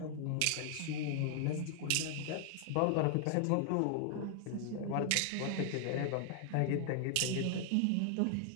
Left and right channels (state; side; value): different; both; correlation 0.00